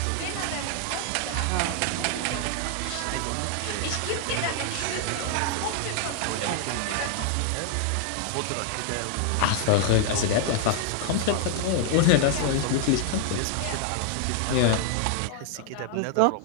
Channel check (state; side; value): different; both; correlation 0.00